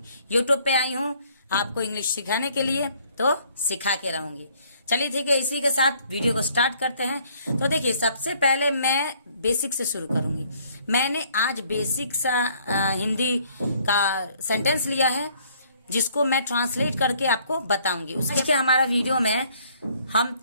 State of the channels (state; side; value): inverted; both; correlation -0.62